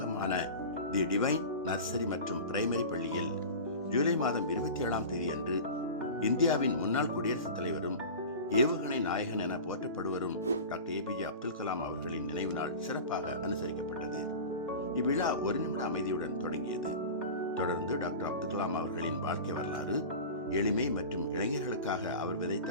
தி டிவைன் நர்சரி மற்றும் பிரைமரி பள்ளியில் ஜூலை மாதம் 27ஆம் தேதி அன்று இந்தியாவின் முன்னாள் குடியரசுத் தலைவரும் ஏவுகணை நாயகன் என போற்றப்படுவரும் டாக்டர் APJ அப்துல் கலாம் அவர்களின் நினைவு நாள் சிறப்பாக அனுசரிக்கப்பட்டது. இவ்விழா 1 நிமிட அமைதியுடன் தொடங்கியது. தொடர்ந்து டாக்டர் அப்துல் கலாம் அவர்களின் வாழ்க்கை வரலாறு, எளிமை மற்றும் இளைஞர்களுக்காக அவர் விதைத்த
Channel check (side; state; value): both; inverted; correlation -0.32